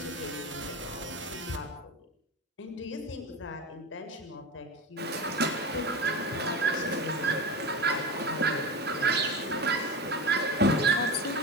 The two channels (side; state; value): both; normal; correlation 0.26